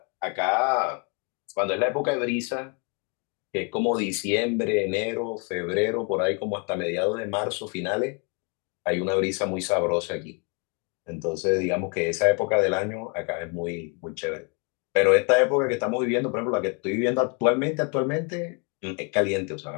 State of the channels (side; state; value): right; quieter; 35.2 dB